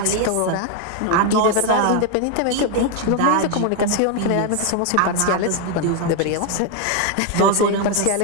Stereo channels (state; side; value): different; both; correlation 0.01